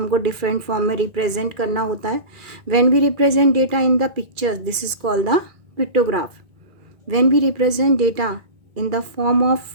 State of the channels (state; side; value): late; left; 2.4 ms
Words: different form में represent करना होता है. When we represent data in the pictures, this is called the pictograph. When we represent data in the form of